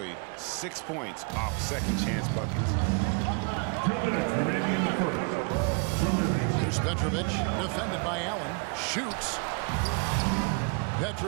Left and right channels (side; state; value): left; quieter; 33.8 dB